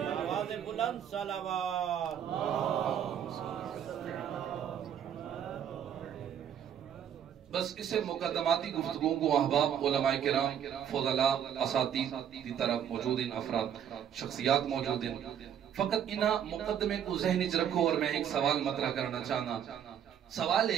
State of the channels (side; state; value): left; quieter; 9.2 dB